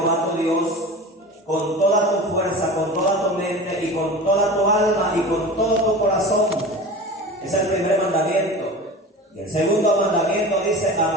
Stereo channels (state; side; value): normal; both; correlation 0.34